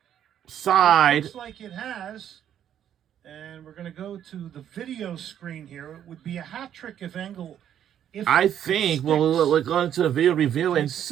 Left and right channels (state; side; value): quieter; left; 10.0 dB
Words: Looks like it has. And we're going to go to the video screen here. It would be a hat trick if Engel. I think we'll go into the video review and